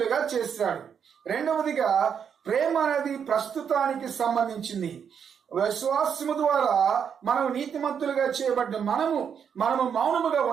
చేశాడు. రెండవదిగా ప్రేమ అనేది ప్రస్తుతానికి సంబంధించింది. విశ్వాసము ద్వారా మనం నీతిమంతులుగా చేయబడ్డ మనము మౌనముగా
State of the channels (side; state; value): left; quieter; 7.5 dB